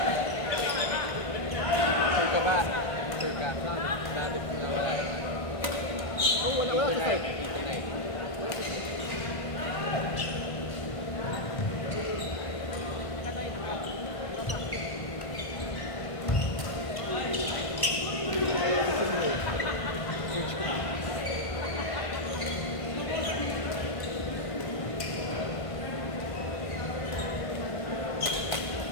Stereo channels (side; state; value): right; late; 1.5 ms